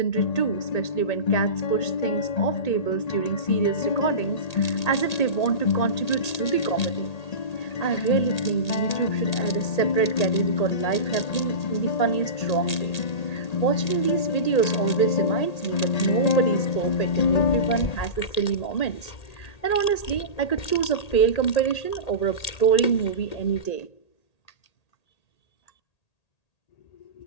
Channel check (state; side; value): late; right; 1.8 ms